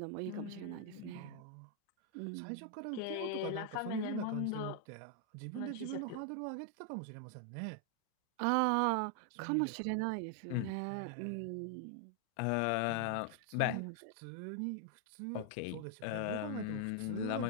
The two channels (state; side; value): different; both; correlation 0.00